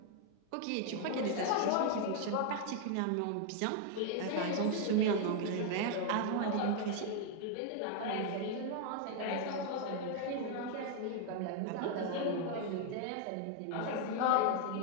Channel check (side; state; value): both; different; correlation 0.00